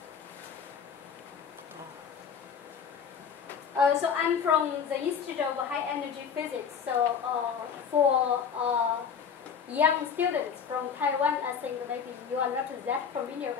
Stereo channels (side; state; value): right; quieter; 6.9 dB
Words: So I'm from the Institute of High Energy Physics. So for young students from Taiwan, I think maybe you are not that familiar